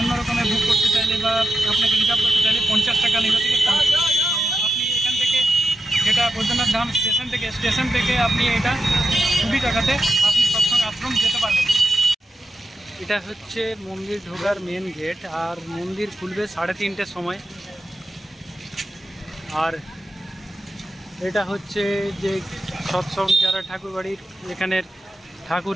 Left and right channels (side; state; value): both; normal; correlation 0.89